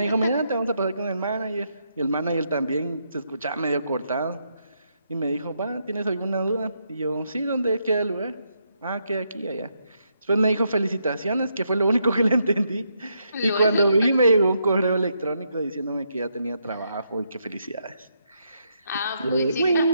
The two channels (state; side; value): inverted; both; correlation -0.78